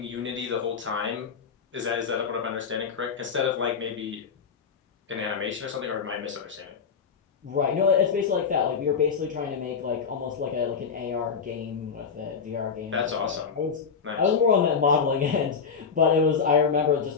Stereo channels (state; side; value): quieter; right; 6.1 dB